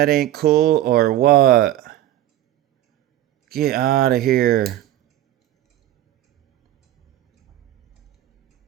ain't cool or what? Get out of here.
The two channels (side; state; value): left; quieter; 13.4 dB